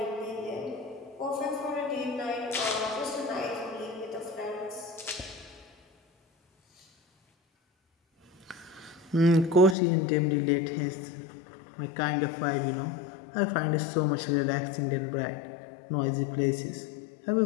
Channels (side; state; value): right; drops out; at 9.8 s